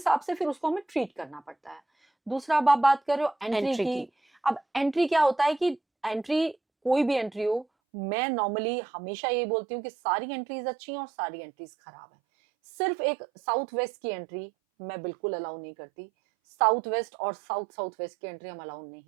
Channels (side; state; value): left; drops out; at 7.7 s